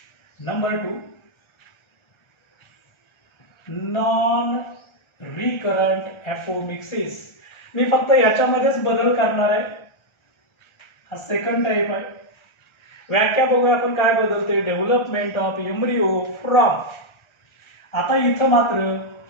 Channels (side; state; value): right; late; 1.3 ms